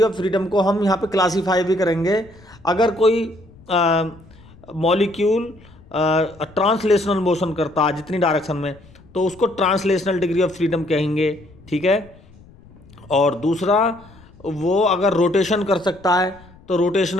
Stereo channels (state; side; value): noise; left; rumble, 25 dB below the sound